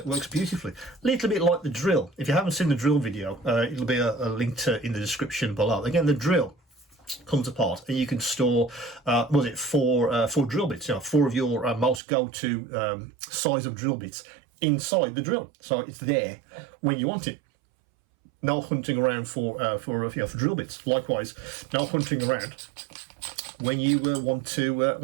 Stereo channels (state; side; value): drops out; left; at 12.0 s